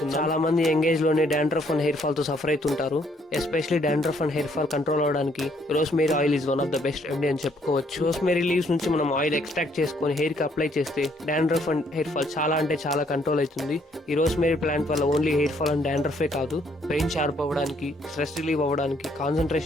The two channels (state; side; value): normal; both; correlation 0.68